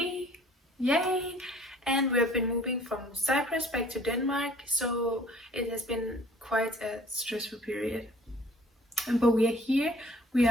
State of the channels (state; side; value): normal; both; correlation 0.53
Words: yay, and we have been moving from Cyprus back to Denmark, so it has been quite a stressful period. But we are here. We